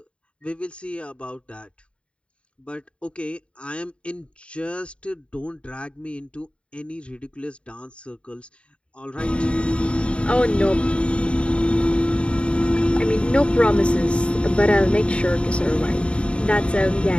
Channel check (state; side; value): late; right; 0.058 ms